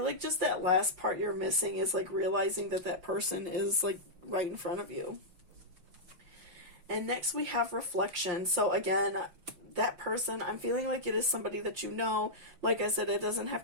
like just that last part you're missing is like realizing that that person is like right in front of you. And next we have reflection. So again, that person, I'm feeling like it is somebody that you know. Like I said, it doesn't have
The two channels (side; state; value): left; late; 5.7 ms